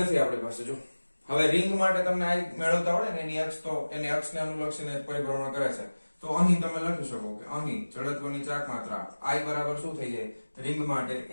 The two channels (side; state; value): both; inverted; correlation -1.00